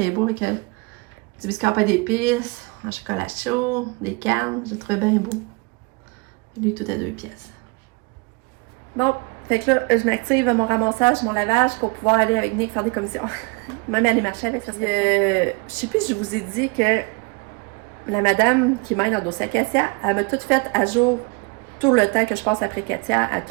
beau avec du biscuit à pain d'épices, un chocolat chaud, des cannes. Je le trouvais bien beau. Et lui, tout à 2 piastres. Bon, Fait que là, je m'active à mon ramassage, mon lavage pour pouvoir aller avec Nick faire des commissions. Même aller marcher avec, ça serait je sais plus, je vous ai dit que la madame qui m'aide dans le dossier Katia, elle m'a tout fait à jour tout le temps que je passe après Katia. Elle a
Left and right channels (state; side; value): quieter; left; 29.1 dB